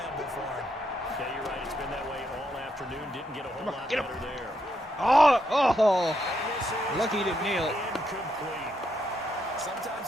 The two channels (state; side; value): normal; both; correlation 0.79